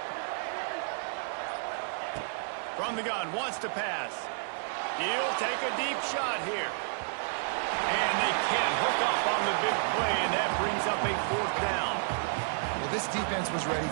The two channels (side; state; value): left; silent; digital silence